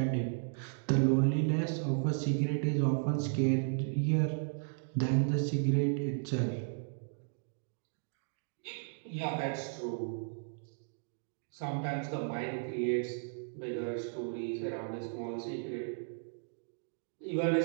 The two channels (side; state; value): left; silent; digital silence